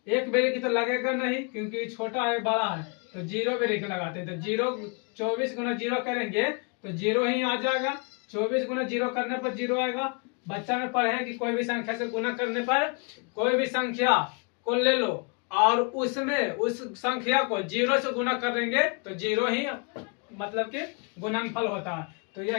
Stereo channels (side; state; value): right; quieter; 35.6 dB